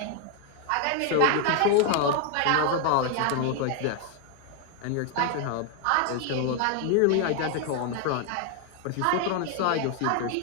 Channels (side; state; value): both; different; correlation 0.00